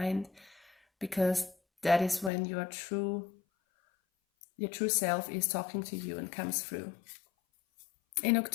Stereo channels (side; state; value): right; drops out; at 2.3 s